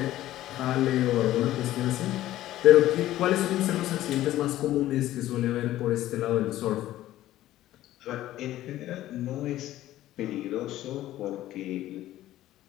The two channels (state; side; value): quieter; right; 14.3 dB